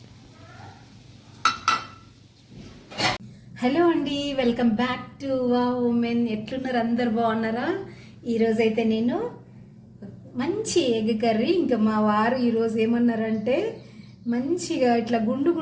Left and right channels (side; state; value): both; identical; correlation 1.00